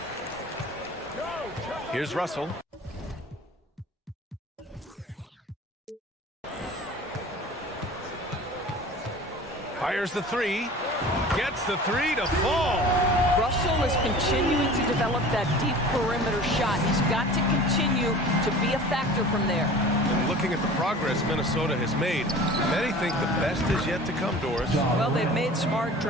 Here's Russell. Fires the three. Gets the three to fall. Russell is continuing to develop that deep perimeter shot. He's got to continue to be a factor from there. And looking at the progress Minnesota has made, many think the best is yet to come, Doris. Well, they've made smart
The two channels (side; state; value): both; normal; correlation 0.41